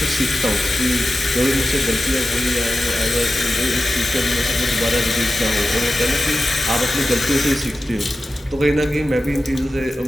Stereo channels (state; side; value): normal; both; correlation 0.93